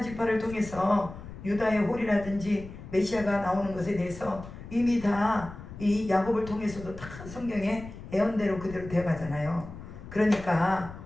지파를 통해서 유다의 홀이라든지 메시아가 나오는 것에 대해서 이미 다 이 야곱을 통해서도 다 성경에 예언대로 그대로 되어가잖아요. 그러니까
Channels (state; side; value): noise; left; rumble, 14 dB below the sound